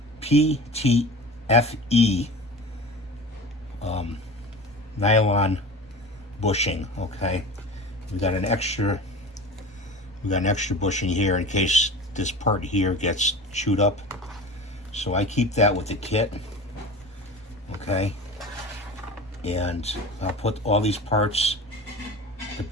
nylon bushing. Okay, we got an extra bushing here in case this part here gets chewed up. So I keep that with the kit. Okay, and I'll put all these parts, the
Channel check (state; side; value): normal; both; correlation 0.34